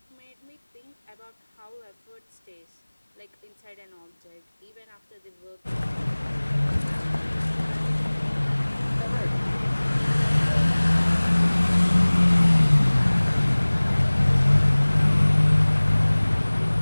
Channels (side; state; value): both; inverted; correlation -1.00